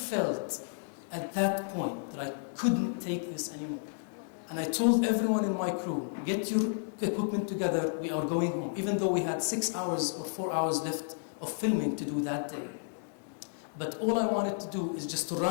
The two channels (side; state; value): right; silent; digital silence